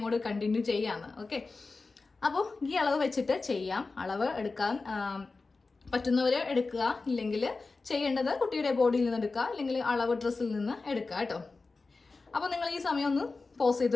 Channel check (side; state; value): right; quieter; 3.9 dB